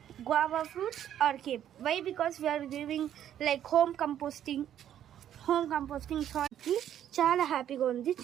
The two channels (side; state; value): left; quieter; 10.6 dB